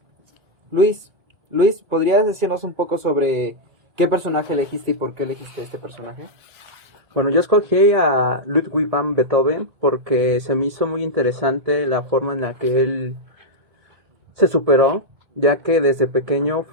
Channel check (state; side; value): late; left; 1.9 ms